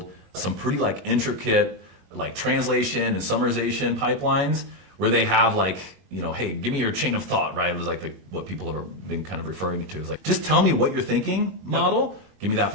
some pretty like intricate like translation and summarization pipelines where they have like, hey, give me your chain of thought, right? It was like what people have been kind of referring to is like, just tell me what you're thinking, model. Give me that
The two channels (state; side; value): late; left; 21 ms